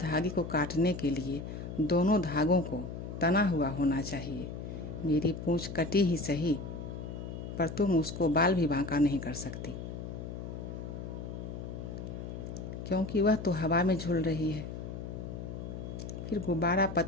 को काटने के लिए दोनों धागों को तना हुआ होना चाहिए। मेरी पूंछ कटी ही सही, पर तुम उसको बाल भी बांका नहीं कर सकती, क्योंकि वह तो हवा में झूल रही है। फिर गुब्बारा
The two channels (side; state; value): left; noise; hum, 8 dB below the sound